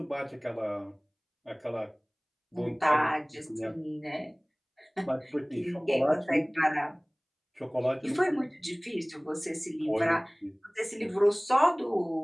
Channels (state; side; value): identical; both; correlation 1.00